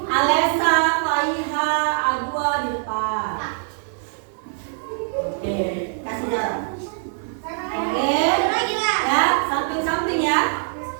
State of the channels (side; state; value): left; silent; digital silence